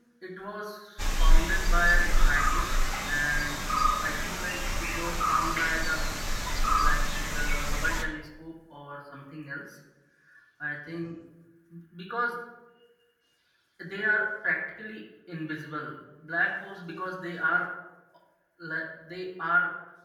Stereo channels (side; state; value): both; identical; correlation 1.00